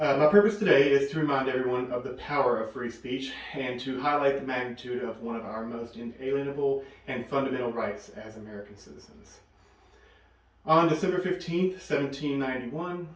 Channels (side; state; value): both; identical; correlation 1.00